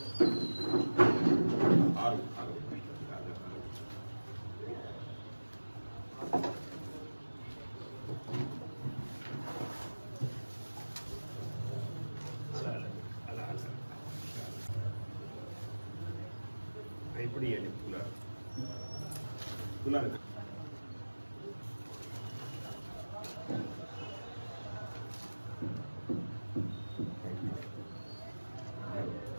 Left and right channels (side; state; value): both; inverted; correlation -1.00